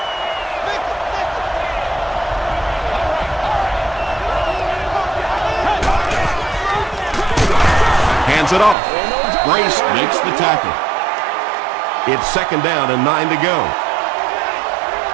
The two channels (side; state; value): left; drops out; at 8.8 s